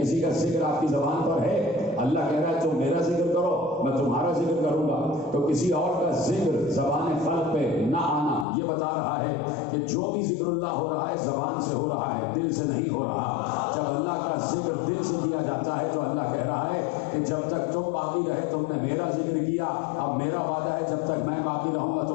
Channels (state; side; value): drops out; right; at 8.5 s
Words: کا ذکر آپ کی زبان پر ہے؟ اللہ کہہ رہا ہے تم میرا ذکر کرو میں تمہارا ذکر کروں گا. تو کسی اور کا ذکر زبان خلق پہ نہ آنا یہ بتا رہا ہے کہ جو بھی ذکر اللہ ہو رہا ہے زبان سے ہو رہا ہے، دل سے نہیں ہو رہا. جب اللہ کا ذکر دل سے کیا جاتا ہے تو اللہ کہہ رہا ہے کہ جب تک تم باقی رہے تم نے میرا ذکر کیا. اب میرا وعدہ ہے جب تک میں باقی رہوں گا